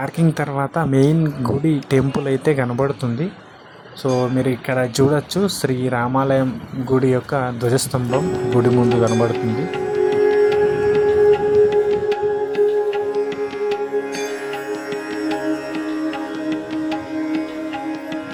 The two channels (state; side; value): identical; both; correlation 1.00